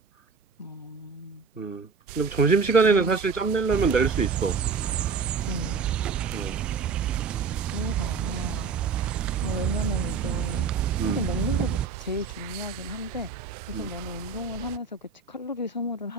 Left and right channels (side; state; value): left; quieter; 5.1 dB